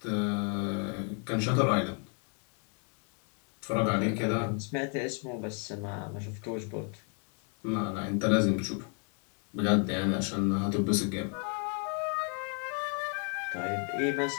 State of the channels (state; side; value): quieter; right; 39.9 dB